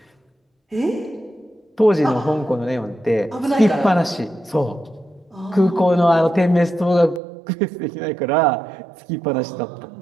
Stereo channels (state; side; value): drops out; left; at 7.2 s